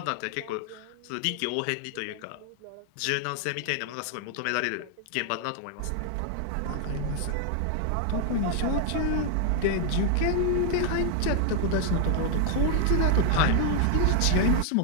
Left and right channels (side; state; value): both; different; correlation 0.00